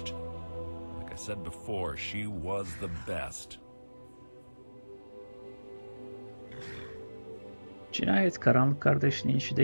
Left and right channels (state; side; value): inverted; both; correlation -1.00